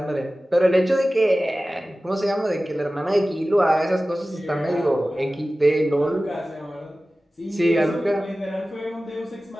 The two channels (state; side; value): normal; both; correlation 0.96